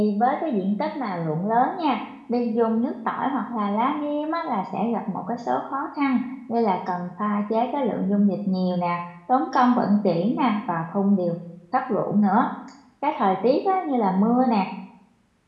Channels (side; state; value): both; identical; correlation 1.00